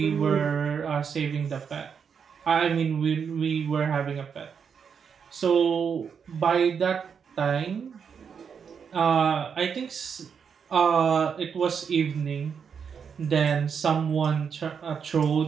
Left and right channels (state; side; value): quieter; left; 6.8 dB